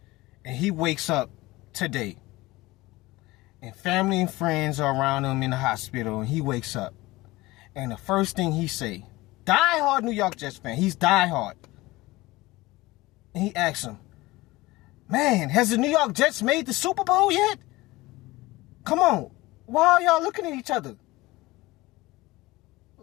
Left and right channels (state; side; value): quieter; right; 20.0 dB